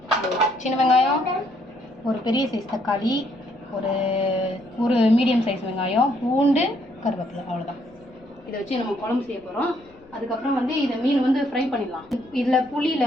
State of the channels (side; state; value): left; noise; rumble, 28 dB below the sound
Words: சின்ன வெங்காயம், ஒரு பெரிய சைஸ் தக்காளி, ஒரு மீடியம் சைஸ் வெங்காயம், பூண்டு, கருவேப்பிலை, அவ்வளோதான். இதை வச்சு நம்ம குழம்பு செய்ய போகிறோம். அதுக்கப்புறம் வந்து இதை மீன் வந்து ஃப்ரை பண்ணிடலாம். இதில்